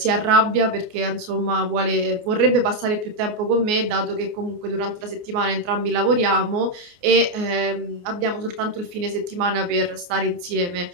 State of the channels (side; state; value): left; late; 28 ms